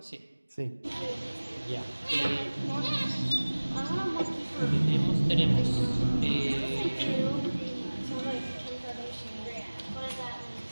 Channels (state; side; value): inverted; both; correlation -1.00